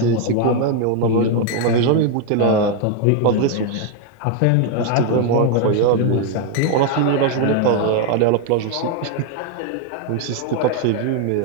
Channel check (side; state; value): both; different; correlation 0.01